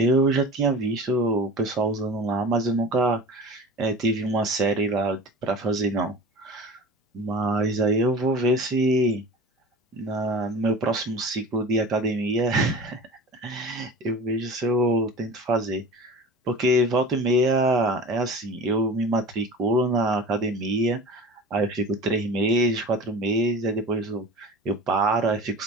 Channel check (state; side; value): normal; both; correlation 0.36